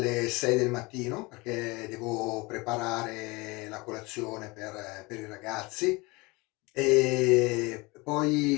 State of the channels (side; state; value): right; quieter; 24.6 dB